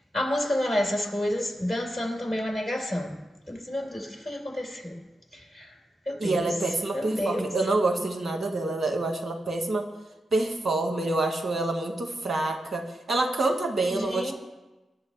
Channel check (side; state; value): both; normal; correlation 0.86